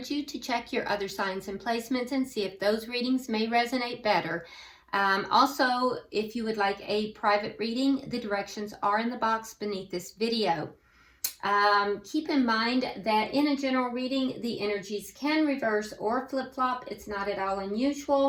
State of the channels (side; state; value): both; identical; correlation 1.00